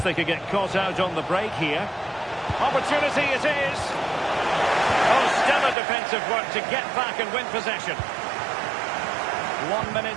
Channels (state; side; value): drops out; left; at 5.8 s